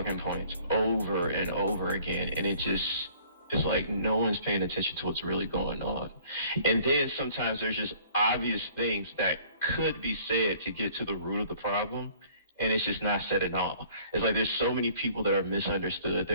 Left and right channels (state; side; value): inverted; both; correlation -0.55